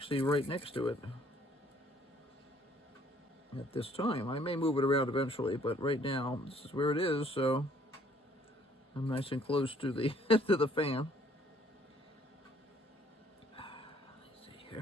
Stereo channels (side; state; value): both; normal; correlation 0.62